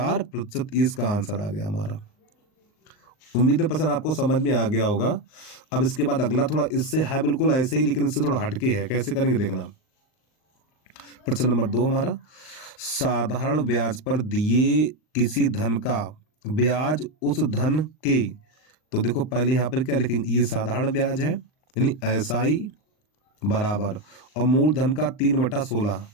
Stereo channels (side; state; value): right; late; 39 ms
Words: इसका आंसर आ गया हमारा। उम्मीद है पसंद आपको समझ में आ गया होगा। अब इसके बाद अगला थोड़ा इससे है बिल्कुल ऐसे ही, लेकिन इससे थोड़ा हटके है। कैसे करेंगे देखना। प्रश्न नंबर 2 हमारा, साधारण ब्याज पर दिए किसी धन का ब्याज उस धन के, तो देखो पहले यहां पर क्या लिखेंगे, ये साधारण ब्याज है यानी एसआई बराबर, और मूलधन का 3/16,